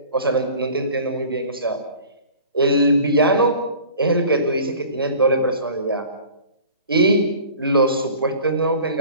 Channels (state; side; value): inverted; both; correlation -0.45